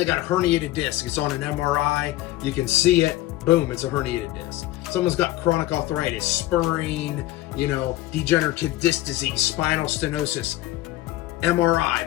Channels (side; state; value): right; quieter; 16.3 dB